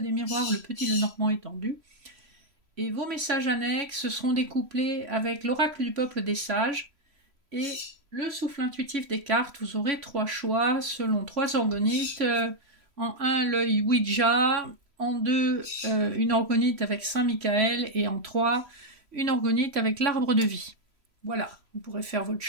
miroirs, le petit Lenormand étendu. Et vos messages annexes, ce seront des couplets avec l'oracle du peuple des sages et le souffle intuitif des cartes. Vous aurez 3 choix selon 3 organites. En 1, l'œil Ouija. En 2, une organite avec Saint-Michael. Et en 3, une organite avec l'arbre de vie. Voilà, vous pourrez faire votre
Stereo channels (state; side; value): late; left; 3.0 ms